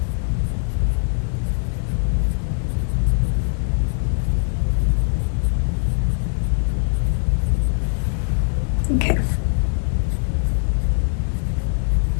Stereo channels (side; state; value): right; silent; digital silence